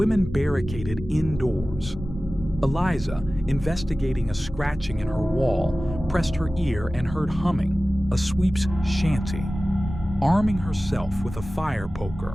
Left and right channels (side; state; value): both; normal; correlation 0.96